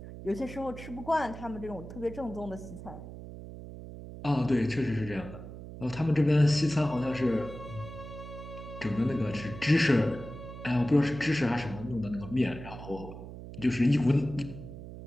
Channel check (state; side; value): noise; right; hum, 12 dB below the sound